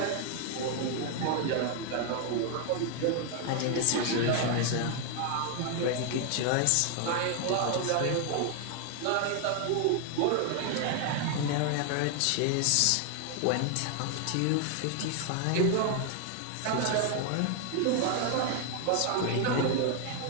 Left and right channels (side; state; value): both; different; correlation 0.00